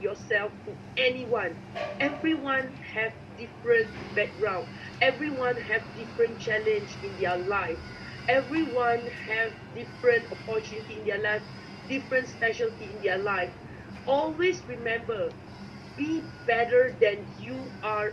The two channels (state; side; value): identical; both; correlation 1.00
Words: yourself to anyone. Everyone have different background, everyone have different challenge in their life, everyone have different opportunity in their life, different specialty in their life. Always remember, be better than you are